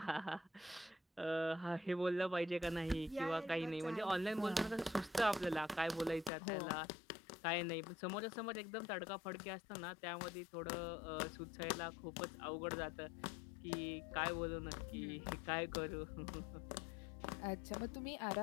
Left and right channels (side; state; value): right; drops out; at 6.3 s